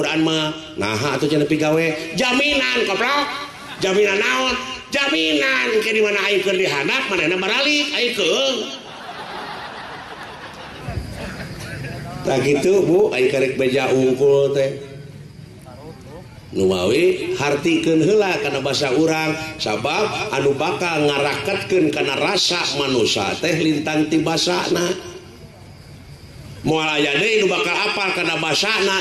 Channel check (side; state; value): both; identical; correlation 1.00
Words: mah naha atuh cenah pigawe jaminan koplok jaminan naon jaminan ke di mana aing keur dihanap manehna baralik aing keung tah kitu Bu aing karek beja ungkul teh numawi hartikeun heula kana basa urang sabab anu bakal ngaraketkeun kana rasa manusia teh lintang ti basana moal aya deui nu bakal apal kana